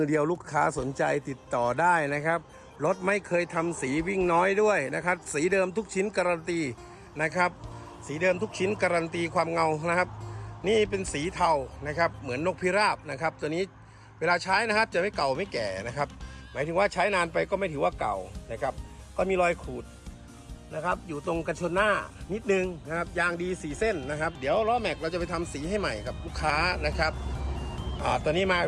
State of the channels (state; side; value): identical; both; correlation 1.00